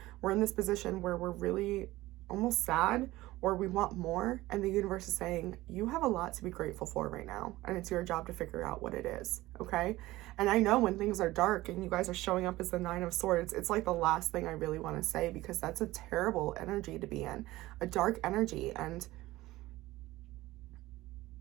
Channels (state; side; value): quieter; left; 17.8 dB